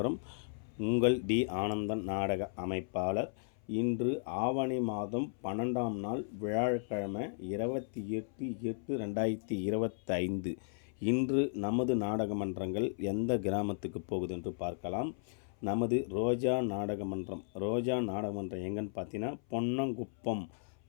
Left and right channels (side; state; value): right; silent; 54 dB below the other